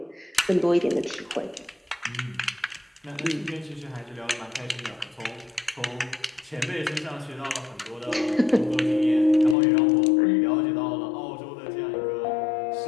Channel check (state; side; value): drops out; right; at 9.6 s